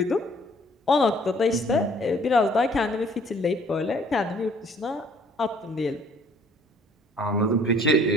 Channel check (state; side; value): normal; both; correlation 0.58